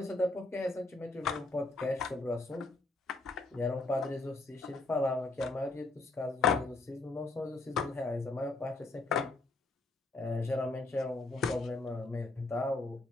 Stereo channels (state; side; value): quieter; right; 3.2 dB